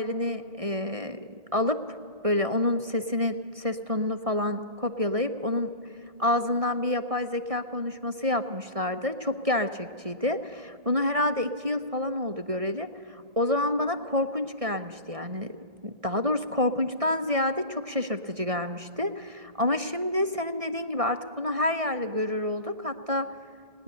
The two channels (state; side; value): late; left; 1.6 ms